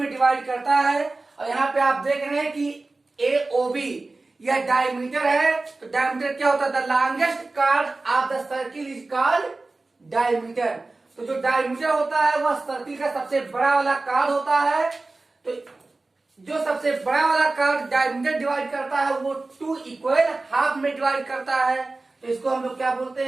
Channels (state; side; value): quieter; left; 3.3 dB